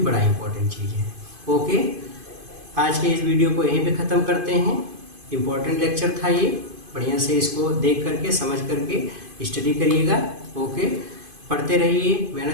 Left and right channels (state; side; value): late; left; 2.5 ms